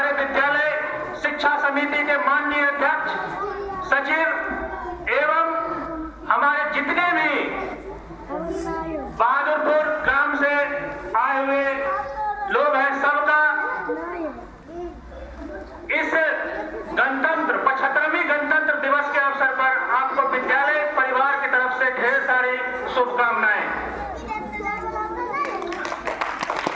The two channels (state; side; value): identical; both; correlation 1.00